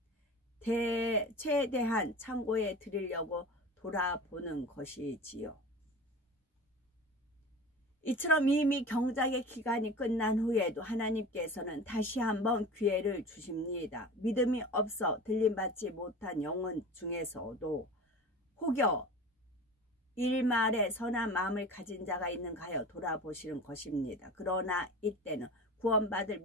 최대한 창고에 드리려고 돌아보는 것이지요. 이처럼 이미 경작의 기간이 끝난 후에도 하나님께서는 다시 한번 기회를 주십니다. 믿음이 없어 들림받지 못한 영혼 중에서도 혹여 일말에 선한 마음을 가진 자가 있는가 하여 돌아보시는 것입니다. 그러나 이때는 구원받을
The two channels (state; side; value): normal; both; correlation 0.35